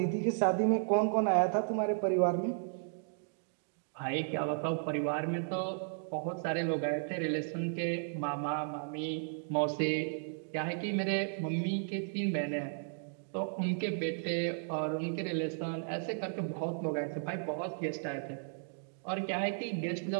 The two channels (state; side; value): silent; left; digital silence